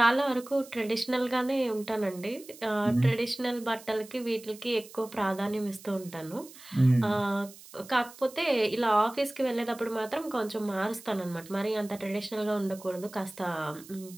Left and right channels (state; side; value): noise; right; hiss, 19 dB below the sound